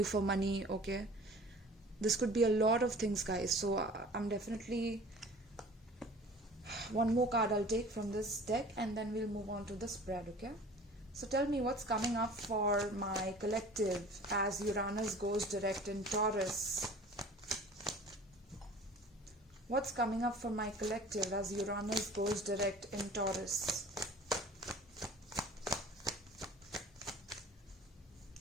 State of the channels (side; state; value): both; normal; correlation 0.45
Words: for money, okay? This could be a lot of things, guys. So I'm definitely, one more card I'll take from this deck and then we'll move on to the spread, okay? So tell me what's coming up for my collective as Uranus goes direct in Taurus. What's coming up for my collective as Uranus goes direct in Taurus?